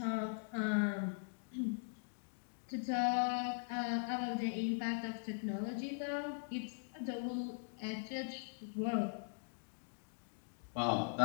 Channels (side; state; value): right; silent; digital silence